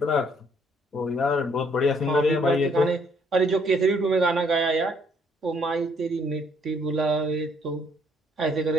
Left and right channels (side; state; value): both; normal; correlation 0.66